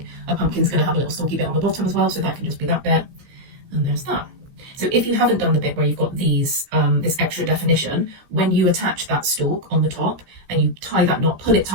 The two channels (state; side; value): late; left; 15 ms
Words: a pumpkin's going to have a little stalky bit on the bottom as well, so that can just be that bit, and there's that. So if you haven't done the bit where you've got these this extra definition, when you attach that stalk on the top and you tie that knot, pull it